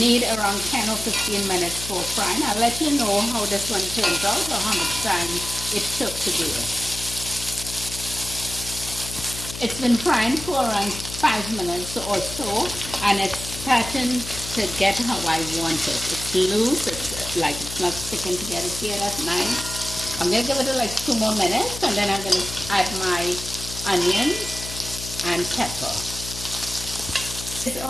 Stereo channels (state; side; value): noise; left; hum, 10 dB below the sound